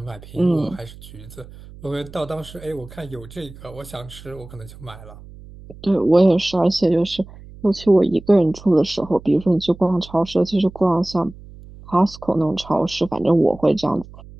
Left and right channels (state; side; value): noise; right; hum, 18 dB below the sound